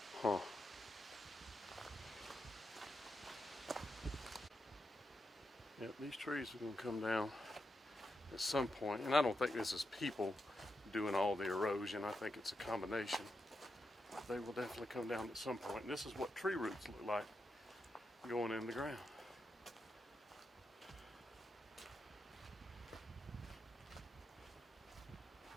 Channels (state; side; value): normal; both; correlation 0.86